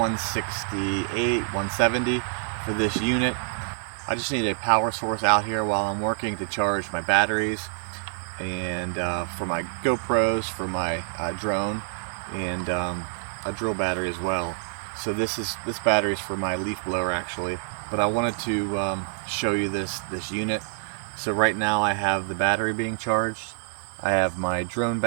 $170 for this unit. I just need a power source out here while I'm working to charge my batteries and for my GoPros, for my drone, and a drill battery as well. So this battery is for my leaf blower actually, but I wanted to show you this unit. So right now I have the battery being charged, I have my drone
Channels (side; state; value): left; silent; 56 dB below the other